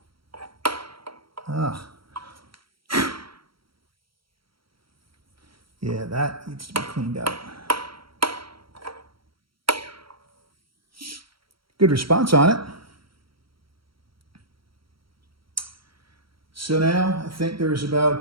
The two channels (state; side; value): late; left; 0.74 ms